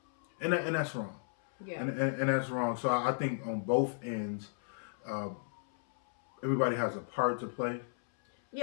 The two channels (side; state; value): right; silent; 55 dB below the other